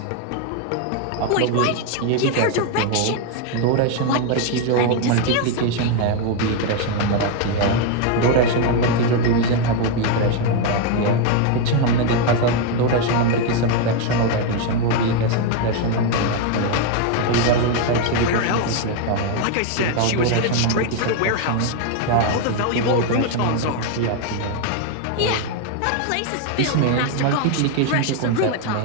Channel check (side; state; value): both; different; correlation 0.01